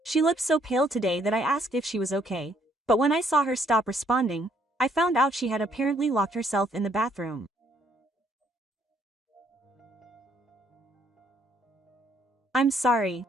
She looked so pale today that I asked if she was okay, but when I saw her stop responding, I found out she had apparently locked herself in the bathroom. I'm sorry.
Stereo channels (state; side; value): normal; both; correlation 0.67